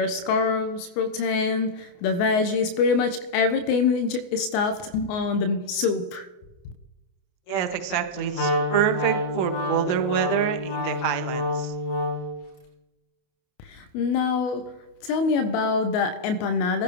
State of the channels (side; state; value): right; late; 29 ms